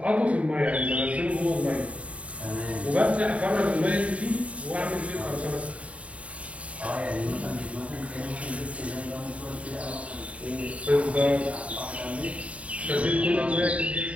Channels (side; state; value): left; late; 0.065 ms